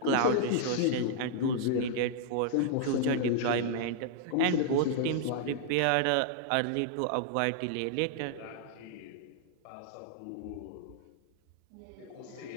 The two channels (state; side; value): different; both; correlation -0.01